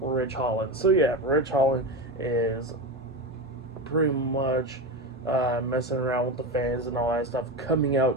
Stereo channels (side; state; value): both; normal; correlation 0.19